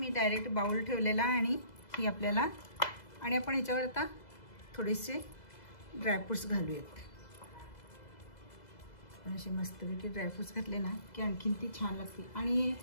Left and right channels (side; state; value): right; late; 2.0 ms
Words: डायरेक्ट बाउल ठेवलेला आणि ही आपल्याला, आणि आपण ह्याच्यावर आता थोडेसे ड्रायफ्रूट्स घालूयात. असे मस्तपैकी ड्रायफ्रूट्स घातले ना की आणखीन ती छान लागते. आणि